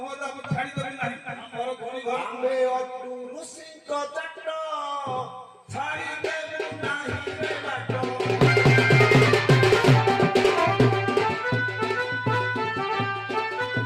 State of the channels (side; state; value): both; identical; correlation 1.00